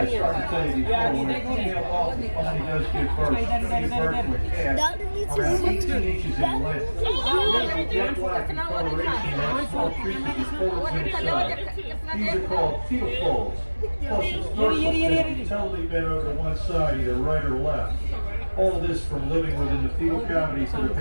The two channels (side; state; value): both; inverted; correlation -1.00